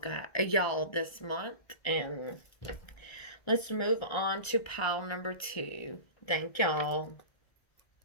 y'all this month, and let's move on to pile number 2. Thank y'all.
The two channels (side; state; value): right; late; 1.3 ms